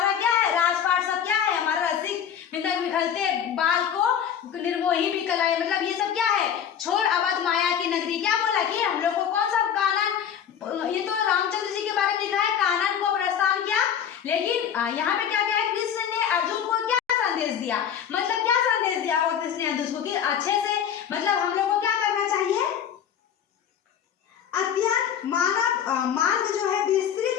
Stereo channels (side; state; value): right; quieter; 8.7 dB